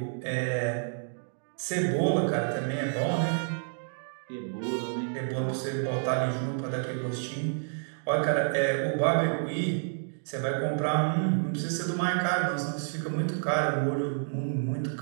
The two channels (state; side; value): silent; left; digital silence